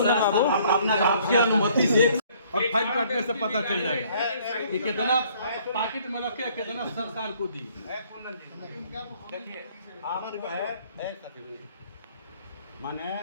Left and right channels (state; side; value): inverted; both; correlation -0.60